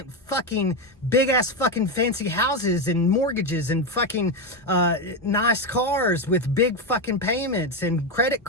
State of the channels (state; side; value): normal; both; correlation 0.10